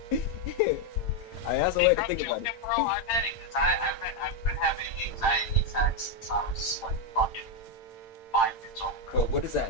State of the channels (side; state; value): right; late; 8.9 ms